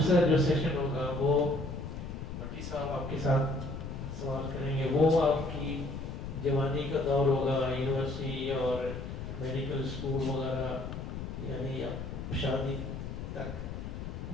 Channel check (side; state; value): left; noise; rumble, 7 dB below the sound